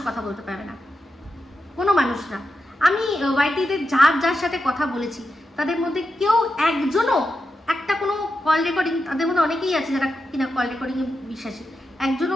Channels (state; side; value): normal; both; correlation 0.88